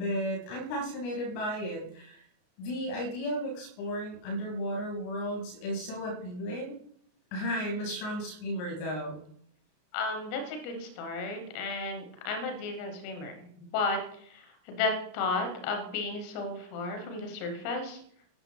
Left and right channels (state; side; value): late; right; 33 ms